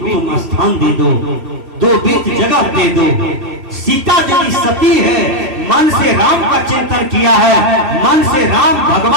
तुम स्थान दे दो, 2 बीत जगह दे दो। सीता यदि सती है, मन से राम का चिंतन किया है, मन से राम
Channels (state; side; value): late; left; 3.0 ms